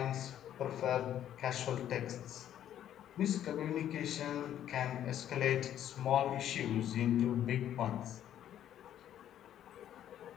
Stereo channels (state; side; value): quieter; right; 11.0 dB